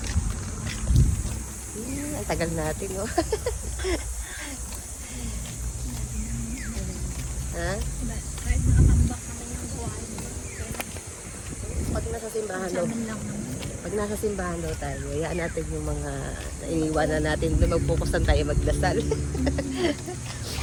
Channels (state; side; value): identical; both; correlation 1.00